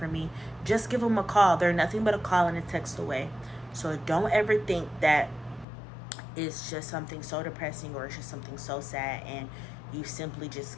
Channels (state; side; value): drops out; right; at 5.7 s